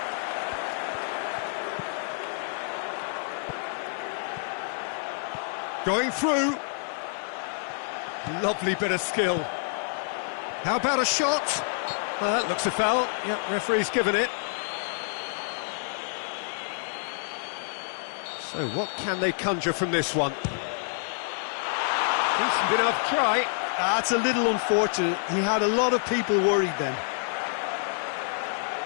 Going through. Lovely bit of skill. How about a shot? Well, that looks a foul. Yep, referee's given it. So what can they conjure from this one? Decent enough try. That's a little unfortunate. He had a lot of people worried then.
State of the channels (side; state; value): right; silent; digital silence